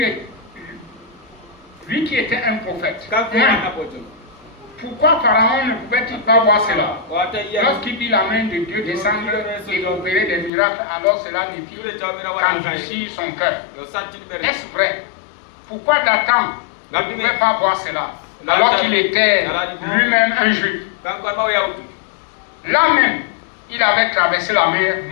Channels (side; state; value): right; drops out; at 10.5 s